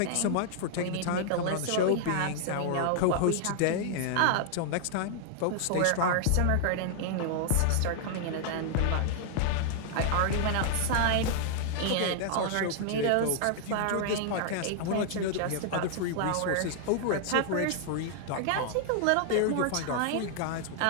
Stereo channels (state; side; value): different; both; correlation -0.01